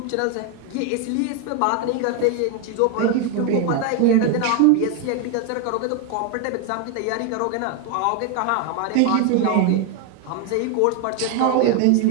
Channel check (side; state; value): both; different; correlation 0.01